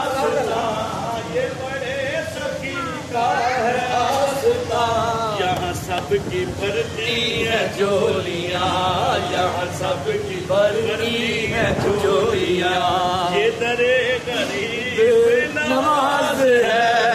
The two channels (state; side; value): identical; both; correlation 1.00